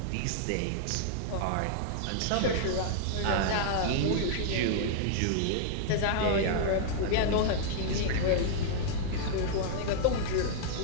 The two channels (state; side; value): different; both; correlation -0.01